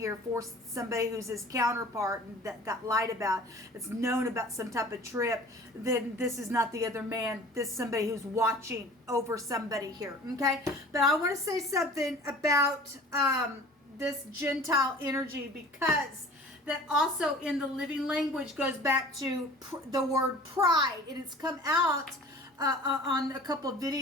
for somebody who's his counterpart and that got lied about. It's known about some type of trip. Then this is not the other man. This is somebody who's watching over somebody here. Okay, but I want to say something about this Gentile energy, because that also in the living language goes back to the word pride, and it's come out on a couple of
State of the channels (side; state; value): both; normal; correlation 0.45